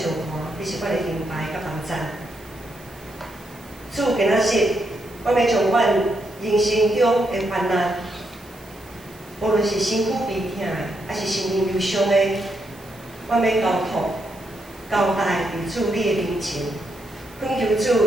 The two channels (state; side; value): noise; right; hiss, 24 dB below the sound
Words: 援，你是阮的灵牌甲帮助。主今仔日，阮要将阮人生中的患难，无论是身躯悲痛的，还是心灵忧伤的，阮要交托、交代伫主你的面前，恳求